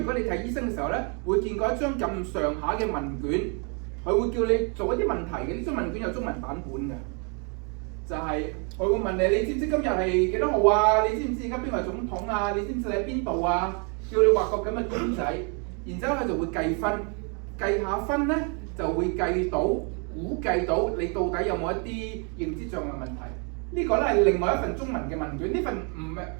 果你睇醫生嘅時候咧，會見過一張咁上下嘅問卷，佢會叫你做一啲問題嘅。呢張問卷有中文版本嘅。就係佢會問你，你知唔知今日係幾多號啊？你知唔知而家邊個係總統啊？你知唔知你喺邊度啊？叫你畫個咁嘅卷仔，然之後佢就會計分，計下分咧就會估計到你到底有冇一啲認知障礙問題。呢個咧係另外一份中文嘅問卷，呢份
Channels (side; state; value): left; quieter; 36.5 dB